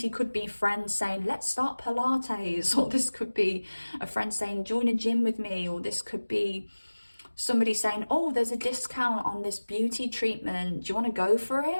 could be friends saying, let's start Pilates, or this could be a friend saying, join a gym with me, or this could be somebody saying, oh, there's a discount on this beauty treatment. Do you want to go for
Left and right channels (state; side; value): inverted; both; correlation -1.00